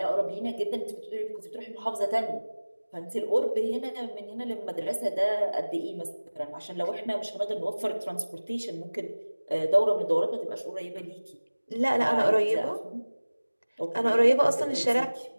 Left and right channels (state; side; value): inverted; both; correlation -1.00